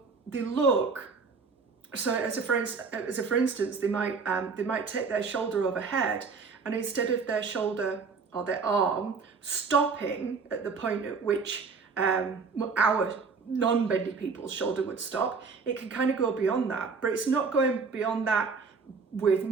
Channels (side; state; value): left; quieter; 5.0 dB